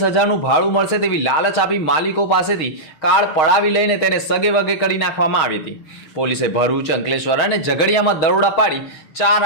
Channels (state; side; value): late; right; 6.4 ms